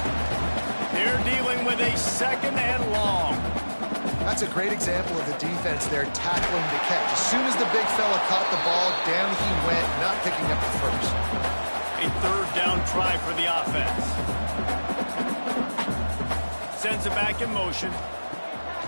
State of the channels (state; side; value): inverted; both; correlation -1.00